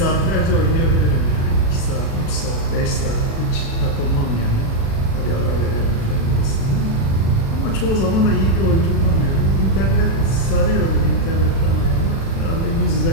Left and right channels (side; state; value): right; late; 36 ms